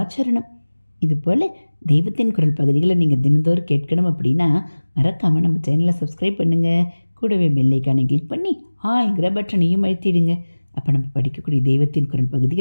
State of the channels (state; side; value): inverted; both; correlation -1.00